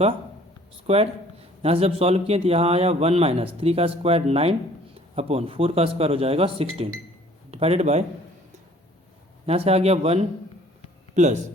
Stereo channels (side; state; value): both; normal; correlation 0.54